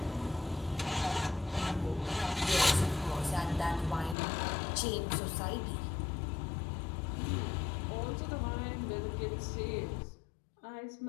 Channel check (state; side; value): drops out; right; at 4.2 s